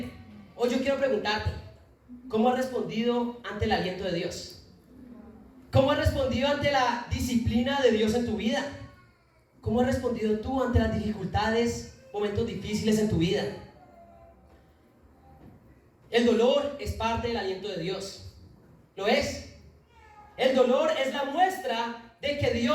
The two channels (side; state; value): both; identical; correlation 1.00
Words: Hoy yo quiero preguntarte, ¿cómo has respondido ante el aliento de Dios? ¿Cómo has respondido ante la disciplina de Dios en tu vida? ¿Cómo has respondido tú ante las dificultades, momentos difíciles en tu vida? El dolor es parte del aliento de Dios. ¿Lo es? El dolor es la muestra de que